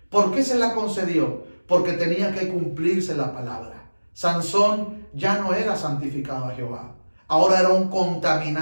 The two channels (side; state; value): both; inverted; correlation -1.00